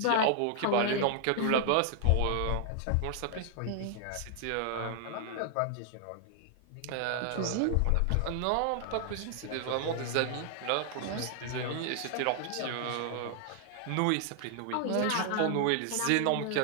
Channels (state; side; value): different; both; correlation 0.00